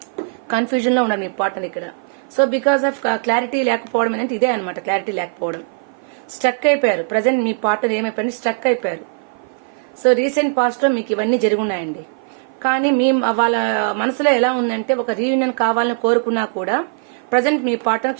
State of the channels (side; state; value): left; silent; 55 dB below the other